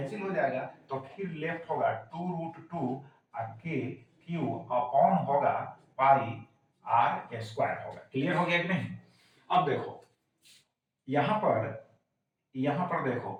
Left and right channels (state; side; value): identical; both; correlation 1.00